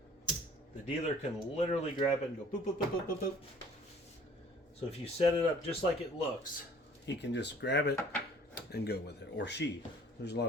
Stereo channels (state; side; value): normal; both; correlation 0.53